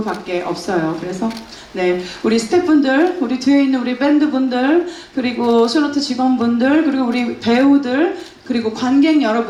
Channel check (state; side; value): identical; both; correlation 1.00